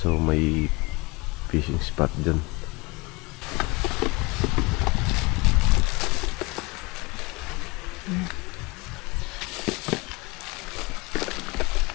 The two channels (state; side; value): quieter; right; 25.4 dB